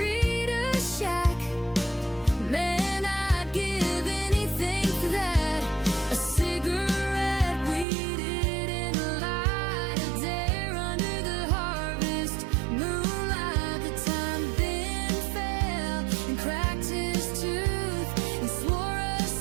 shack. Man, I'd give anything for that. A cigarette we didn't light, a dare under the harvest moonlight. The time Ben fell and cracked his tooth and swore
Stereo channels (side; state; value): left; drops out; at 7.9 s